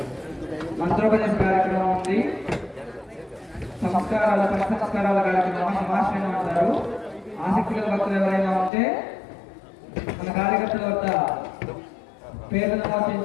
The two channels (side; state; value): right; drops out; at 8.7 s